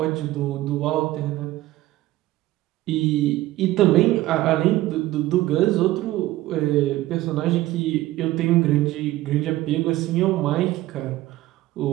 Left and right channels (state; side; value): quieter; left; 16.4 dB